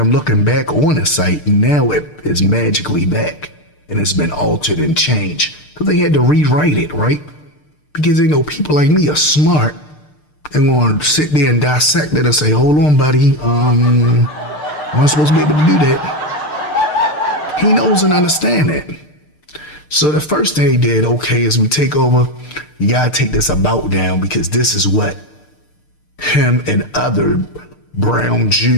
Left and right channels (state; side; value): late; right; 6.6 ms